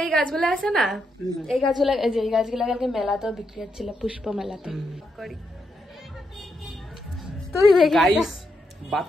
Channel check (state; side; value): normal; both; correlation 0.81